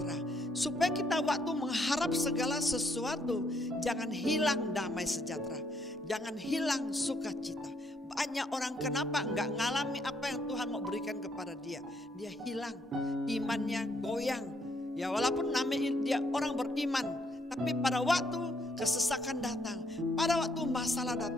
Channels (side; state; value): both; normal; correlation 0.71